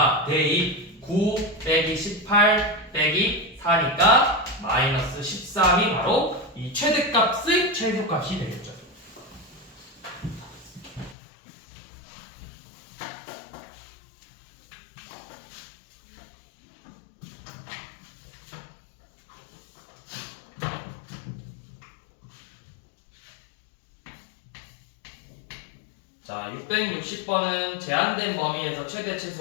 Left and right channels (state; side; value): drops out; right; at 11.2 s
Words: 대입 9 빼기 18 빼기 4니까 마이너스 13이 바로 이 최대값의 최소값이 되겠죠. 자, 660번은 제한된 범위에서 최대